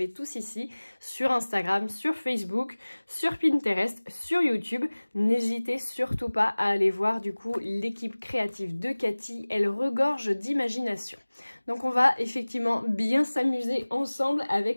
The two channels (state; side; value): inverted; both; correlation -1.00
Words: tous ici. Sur Instagram, sur Facebook, sur Pinterest, sur YouTube. N'hésitez surtout pas à aller voir du coup l'équipe créative de Cathy. Elle regorge d'imagination. Donc, on va effectivement bien s'amuser ensemble